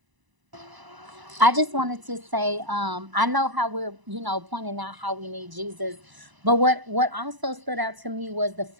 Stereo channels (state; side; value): late; left; 1.0 ms